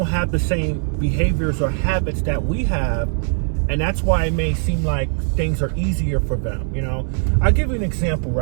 have the same behaviors or habits that we have, and that's why it may seem like things are easier for them. I'll give you an example,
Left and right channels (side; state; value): left; silent; 55 dB below the other